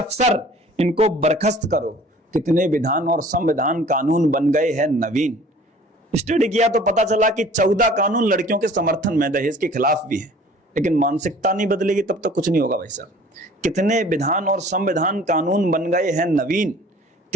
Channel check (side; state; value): both; normal; correlation 0.50